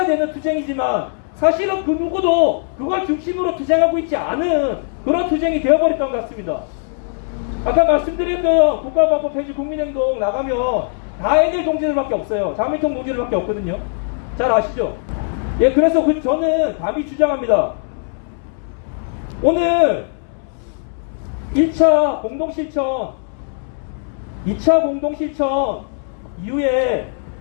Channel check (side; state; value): right; silent; 63 dB below the other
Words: 되는 투쟁이지만 사실은 그 누구도 그걸 중심으로 투쟁하고 있지 않은 그런 투쟁이 되어버렸던 것 같습니다. 아까 말씀드렸던 국가방법 폐지 국민행동 나가면 다 NL 동지들밖에 없어요. 자민통 동지들밖에 없거든요. 잘 아시죠? 예, 그래서 저는 감히 주장합니다. 오늘 1차 공동실천, 2차 공동실천 이후에